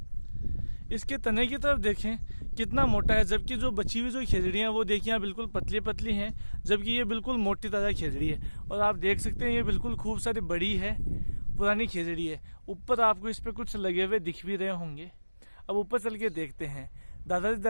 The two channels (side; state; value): both; inverted; correlation -1.00